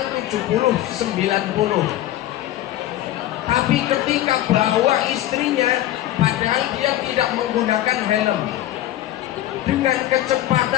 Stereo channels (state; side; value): quieter; right; 14.0 dB